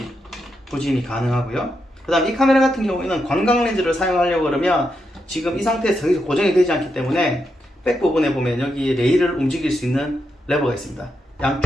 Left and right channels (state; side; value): normal; both; correlation 0.84